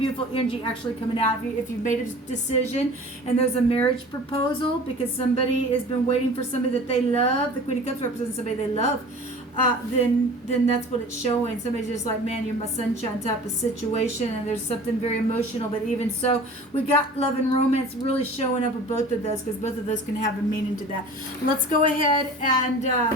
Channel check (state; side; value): normal; both; correlation 0.42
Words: energy actually coming out of you if you've made a decision and there's a marriage proposal, because somebody has been waiting for somebody that they love. The Queen of Cups represents somebody they love. Then that's what it's showing. Somebody's just like, man, you're my sunshine type of situation, and there's something very emotional. But even so, we got love and romance really showing up with both of those, because both of those can have a meaning to that. Let's go ahead